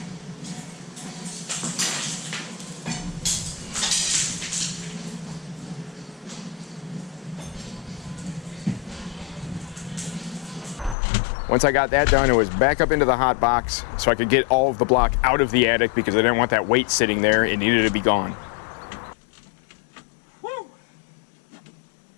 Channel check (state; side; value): drops out; right; at 11.0 s